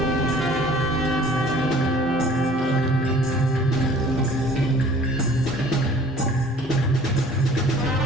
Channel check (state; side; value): normal; both; correlation 0.51